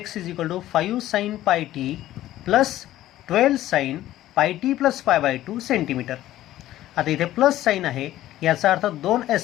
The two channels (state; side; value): quieter; right; 14.2 dB